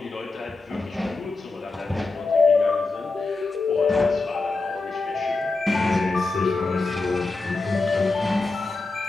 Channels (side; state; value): right; quieter; 3.6 dB